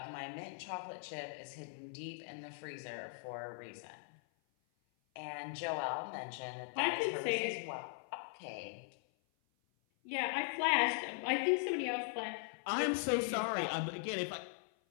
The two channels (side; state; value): right; silent; 51 dB below the other